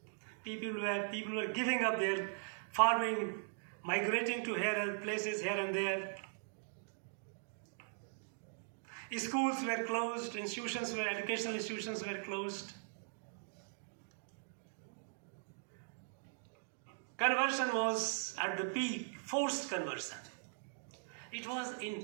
People were giving up their farming, migrating to places here and there. Schools were closed, educational institutions were closed. Conversion was at the peak, forced conversion. It was in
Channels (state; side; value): silent; left; digital silence